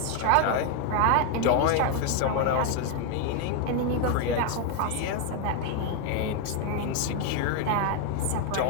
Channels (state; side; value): different; both; correlation 0.01